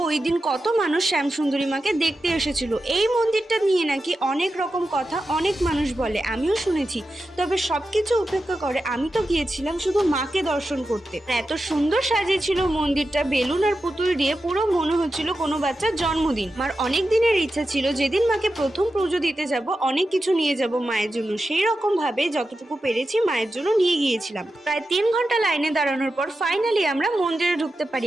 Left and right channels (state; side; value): normal; both; correlation 0.91